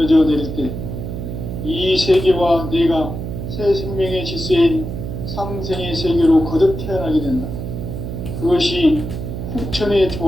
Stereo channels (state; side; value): noise; right; hum, 6 dB below the sound